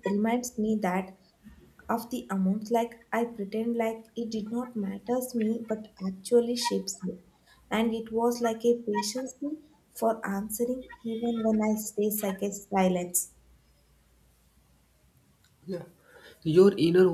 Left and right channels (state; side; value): identical; both; correlation 1.00